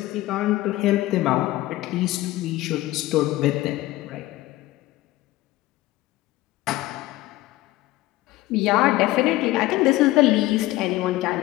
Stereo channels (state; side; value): quieter; right; 17.3 dB